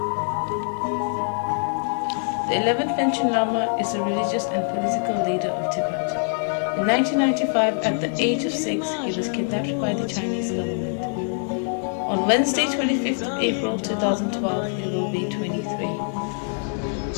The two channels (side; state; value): right; silent; 58 dB below the other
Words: The 11th Panchen Lama is a religious and political leader of Tibet. In 1995, at the age of 6, he was kidnapped by the Chinese government. On Wednesday, 25th of April 2012, he will be 23.